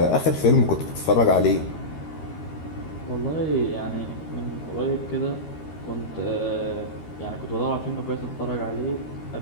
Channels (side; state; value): right; late; 13 ms